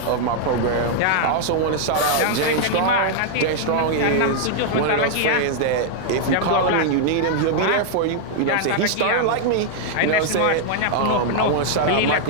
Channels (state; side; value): different; both; correlation -0.01